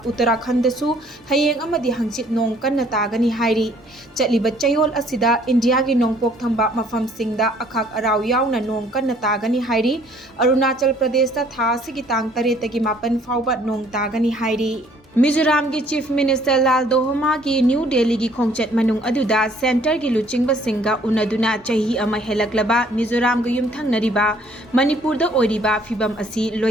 Uttarakhand da su hayeng amadi hangchit nong kanna tagani hairi. Chaliba chayol asida India gi nong pok thamba mafam singda akhak araw yauna nong kanna tagani hairi. Arunachal Pradesh da thasi gi tang tareta gi mapan fawba nong tagani hairi. Mizoram ki Chief Minister Lal Dohoma ki New Delhi ki khongchat manung aduda center ki luchingba singa unaduna chahi ama helaklaba Mizoram ga yumthang nariba Manipur da oiriba fibam asi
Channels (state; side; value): normal; both; correlation 0.60